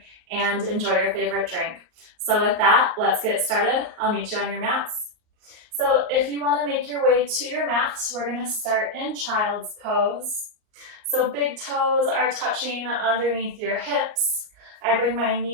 and enjoy your favorite drink. So with that, let's get started. I'll meet you on your mats. So if you want to make your way to your mat, we're going to start in child's pose. So big toes are touching underneath your hips. I bring my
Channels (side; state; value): left; late; 38 ms